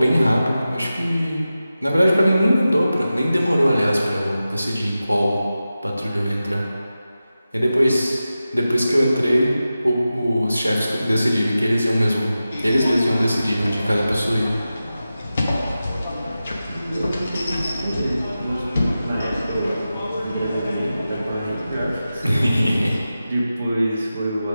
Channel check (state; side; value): inverted; both; correlation -0.93